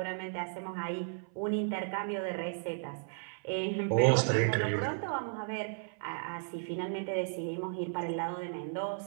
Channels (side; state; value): left; silent; 55 dB below the other